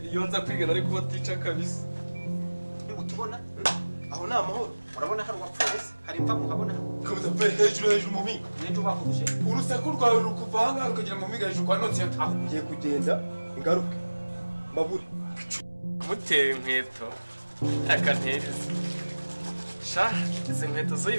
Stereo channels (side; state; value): both; inverted; correlation -1.00